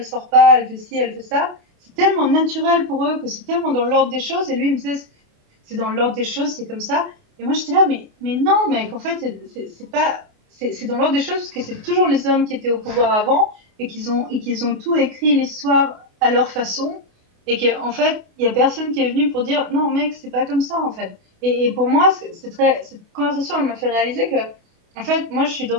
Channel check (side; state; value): left; late; 28 ms